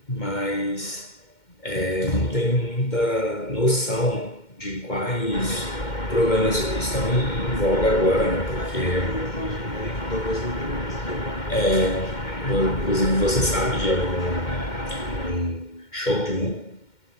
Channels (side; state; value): right; late; 2.1 ms